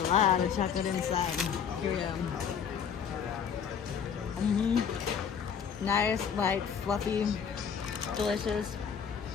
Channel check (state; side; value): quieter; right; 7.2 dB